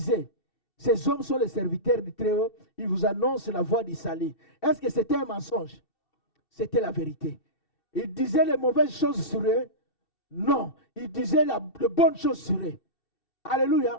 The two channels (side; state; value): right; late; 2.7 ms